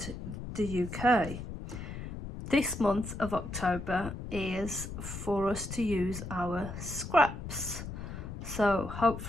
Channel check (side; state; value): left; noise; rumble, 8 dB below the sound